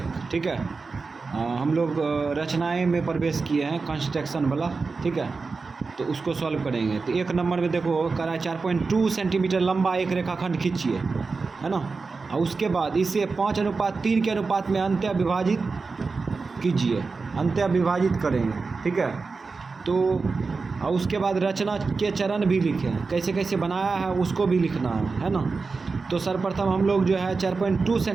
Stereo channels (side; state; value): left; quieter; 4.3 dB